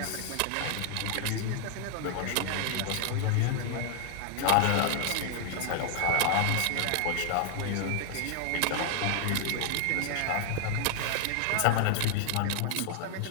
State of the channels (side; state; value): both; different; correlation 0.00